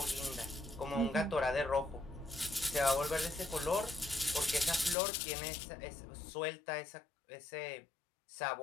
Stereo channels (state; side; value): drops out; right; at 5.0 s